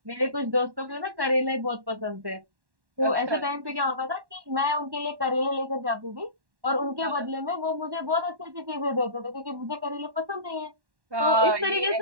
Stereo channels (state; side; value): late; left; 1.1 ms